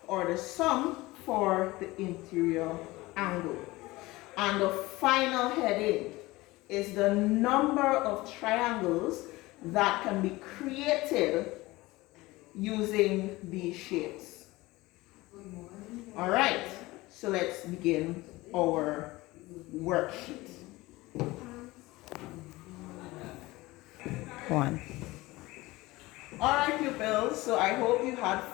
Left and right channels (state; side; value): quieter; right; 20.2 dB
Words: or the sum for the interior angle. And the final heading is the number of triangles that can be created using these shapes. All right, so let's begin our worksheet. 1. All right, pupils, so I hope you had